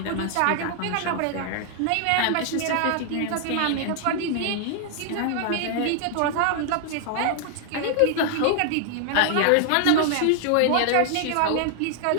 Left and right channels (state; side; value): different; both; correlation 0.00